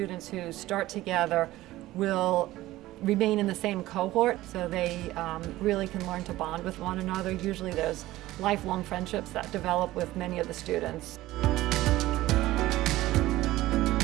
who start together will remain in the same cohort, so they really can learn to bond with one another. Usually there's lifelong friendships that develop with many of the students.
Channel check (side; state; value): left; quieter; 16.6 dB